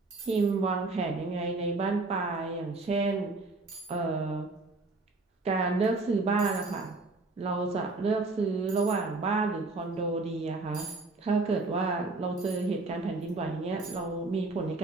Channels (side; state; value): left; quieter; 3.4 dB